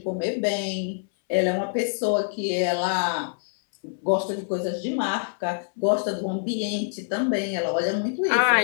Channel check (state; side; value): silent; right; 62 dB below the other